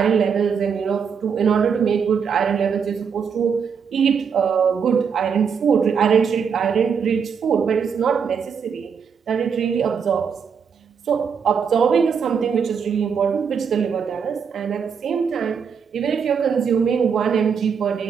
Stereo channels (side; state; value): left; quieter; 6.6 dB